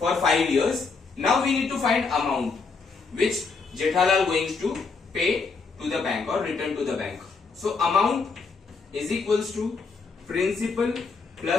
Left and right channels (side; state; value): right; quieter; 4.6 dB